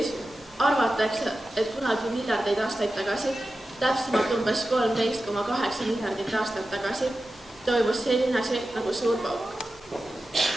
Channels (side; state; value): both; normal; correlation 0.93